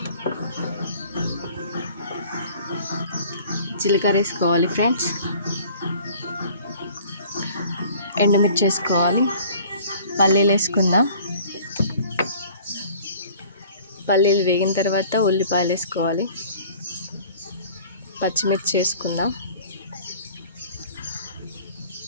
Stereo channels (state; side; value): inverted; both; correlation -0.50